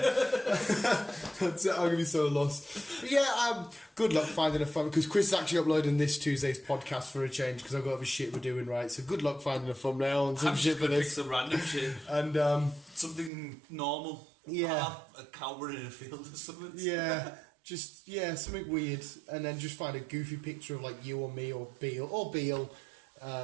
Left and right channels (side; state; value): left; drops out; at 13.3 s